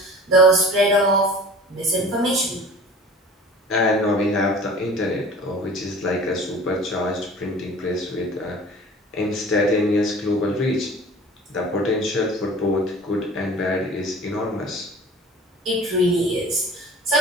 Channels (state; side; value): normal; both; correlation 0.43